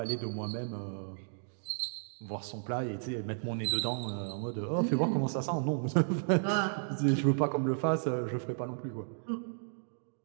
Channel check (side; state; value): left; silent; digital silence